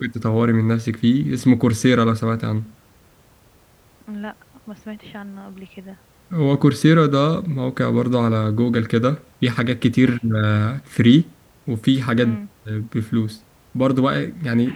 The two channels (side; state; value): both; identical; correlation 1.00